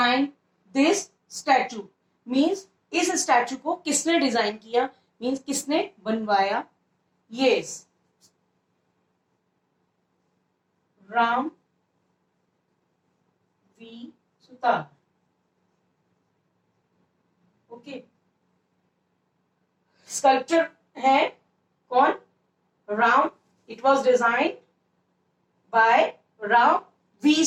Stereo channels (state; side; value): identical; both; correlation 1.00